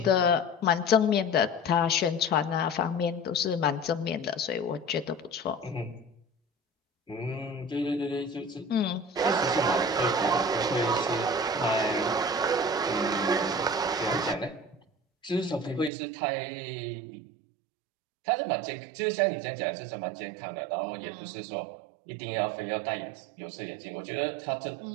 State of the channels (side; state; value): left; drops out; at 15.9 s